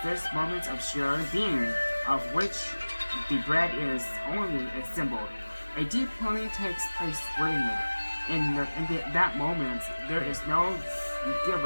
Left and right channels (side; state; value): both; inverted; correlation -1.00